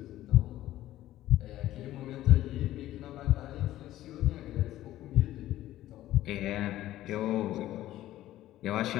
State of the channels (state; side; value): quieter; right; 14.3 dB